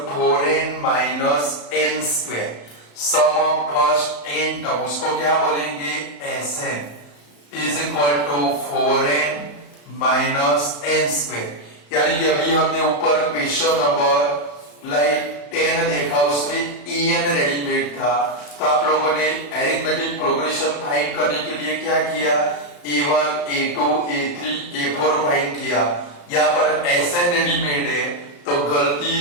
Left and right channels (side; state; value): right; late; 34 ms